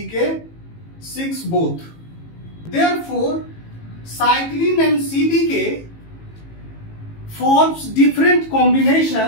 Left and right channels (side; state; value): right; late; 18 ms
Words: both. Therefore, cyclin and CDK forms different